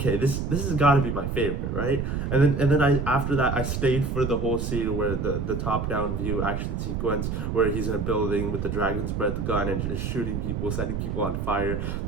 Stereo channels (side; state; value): right; noise; rumble, 2 dB below the sound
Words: this has got to be my favorite, right? And then I after that, I stayed for the whole scene where the top down view action sequence where he's in a building with the dragon's breath gun and just shooting people, setting people on fire.